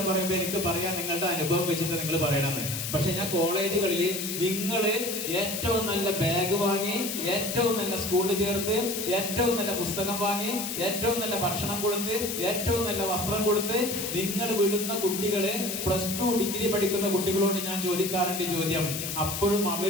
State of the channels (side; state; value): left; noise; hiss, 4 dB below the sound